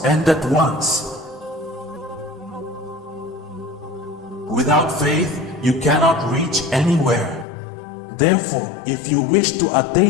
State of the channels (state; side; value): drops out; right; at 7.5 s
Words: end at once. Without faith, you cannot reach anywhere. Therefore, if you wish to